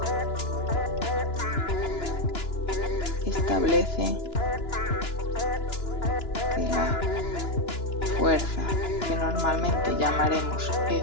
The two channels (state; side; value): late; right; 2.9 ms